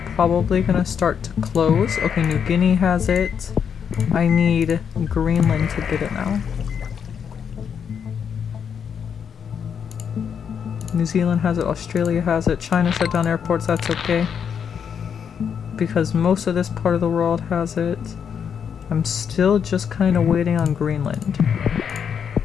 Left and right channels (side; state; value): right; quieter; 7.4 dB